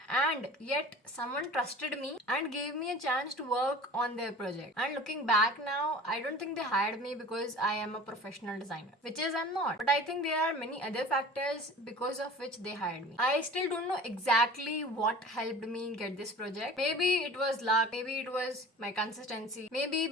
and yet someone trusted me and gave me a chance to work on their project. And looking back now, I don't think they hired me because I am a professional designer, which is I'm not. But I think there are many other factors because of which they hired me. I still don't know exactly what helped me get this project. Maybe it was luck, maybe it was my consistency, maybe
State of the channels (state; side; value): normal; both; correlation 0.41